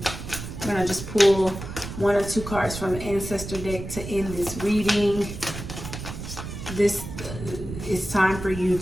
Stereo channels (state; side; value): noise; right; rumble, 9 dB below the sound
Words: I'm going to just pull one or two cards from the ancestor deck to end this reading. This is time for you